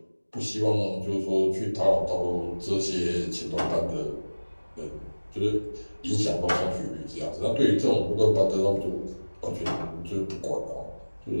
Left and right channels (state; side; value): inverted; both; correlation -1.00